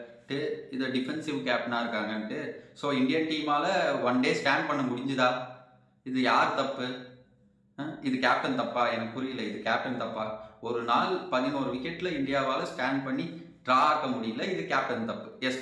இது டிஃபென்சிவ் கேப்டனாக இருக்காங்கன்ட்டு. ஸோ இந்தியன் டீமால் 1 டே ஸ்டாண்ட் பண்ண முடிஞ்சுதா? இது யார் தப்பு? இது கேப்டன் தப்பா? எனக்கு புரியல, இது கேப்டன் தப்பா? ஒரு நாள் 11 விக்கெட்டில் இந்தியாவால் ஸ்டாண்ட் பண்ணி ட்ரா ஆக்க முடியல, இது கேப்டன் தப்பு. எஸ்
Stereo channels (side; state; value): both; identical; correlation 1.00